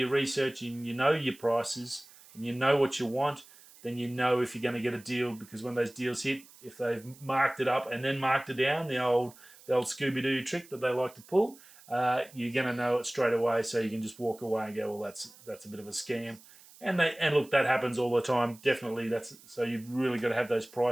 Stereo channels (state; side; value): noise; right; hiss, 23 dB below the sound